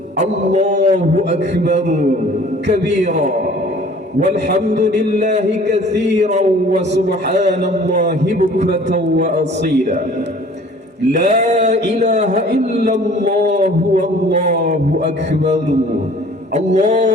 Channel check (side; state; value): both; normal; correlation 0.50